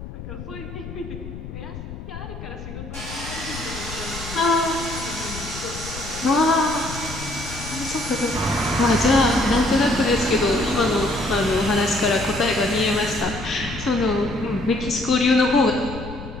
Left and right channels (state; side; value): noise; left; rumble, 11 dB below the sound